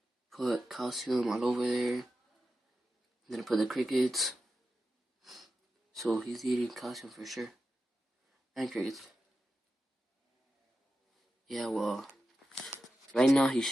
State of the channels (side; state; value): both; normal; correlation 0.91